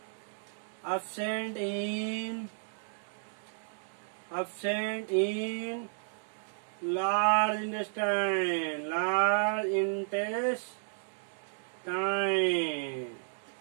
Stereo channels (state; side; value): silent; left; digital silence